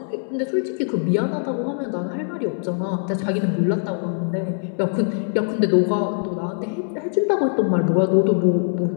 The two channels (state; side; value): silent; right; 64 dB below the other